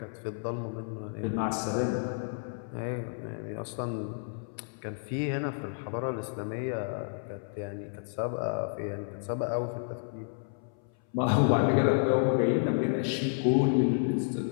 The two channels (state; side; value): silent; right; 57 dB below the other